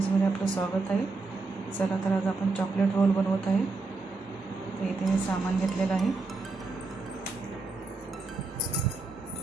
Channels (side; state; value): left; quieter; 3.8 dB